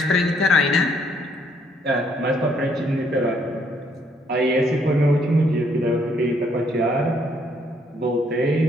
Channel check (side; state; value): both; normal; correlation 0.68